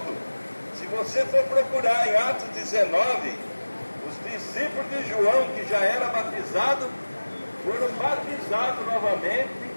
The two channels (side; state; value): both; inverted; correlation -1.00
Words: Se você for procurar em Atos 19, os discípulos de João, que já era batizado, foram batizados novamente